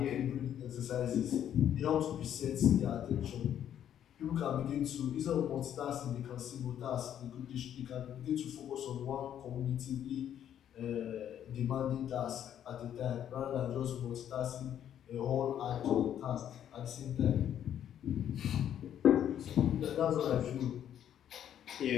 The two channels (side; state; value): right; quieter; 10.1 dB